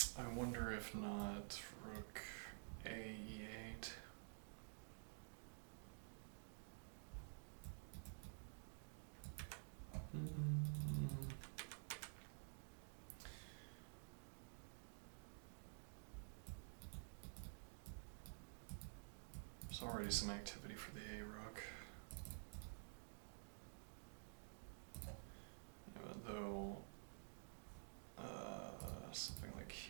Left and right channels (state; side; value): silent; left; digital silence